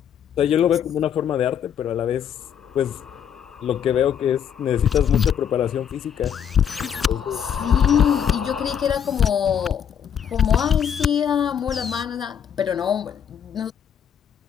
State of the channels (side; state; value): right; quieter; 8.4 dB